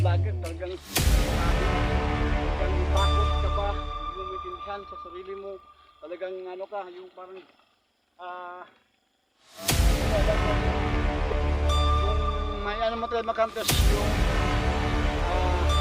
vlogger, talagang takot ka ba, hindi mo maintindihan sa sarili mo. Talagang ano ka, yung parang yung may ano mo talaga makantos yung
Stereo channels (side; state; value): both; identical; correlation 1.00